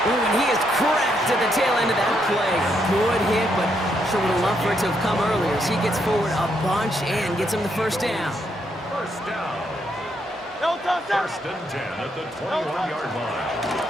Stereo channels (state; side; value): normal; both; correlation 0.76